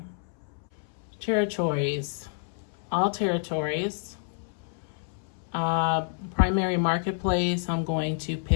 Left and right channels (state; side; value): silent; right; 59 dB below the other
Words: Territories. All territories. Primary marketplace, I'm going to